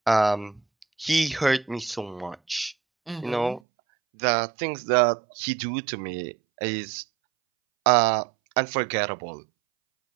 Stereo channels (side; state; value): left; drops out; at 3.6 s